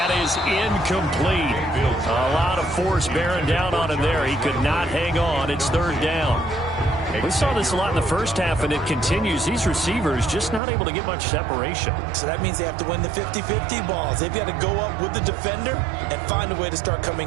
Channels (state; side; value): drops out; left; at 10.6 s